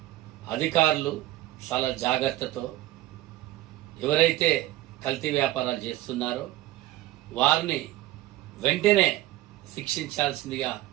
అధికారులు చాలా జాగ్రత్తతో ఎవరైతే కల్తీ వ్యాపారాలు చేస్తున్నారో వారిని వెంటనే శిక్షించాల్సిందిగా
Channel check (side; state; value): left; quieter; 16.0 dB